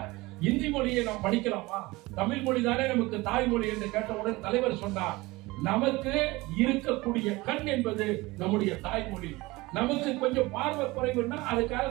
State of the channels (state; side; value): quieter; left; 21.5 dB